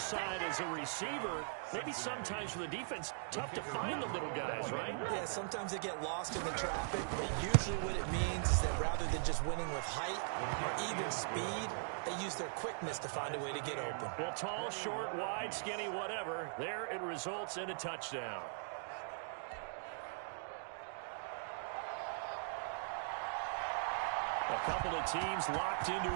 as a receiver. Maybe sometimes for the defense, tough to find the little guys, right? Yeah, sometimes they get lost in the traffic, but usually what it means is that rather than just winning with height or even speed, they use their quickness to find a way to get open. Well, tall, short, wide, skinny, whatever, there it results in a touchdown. A couple of teams locked into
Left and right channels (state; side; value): silent; left; digital silence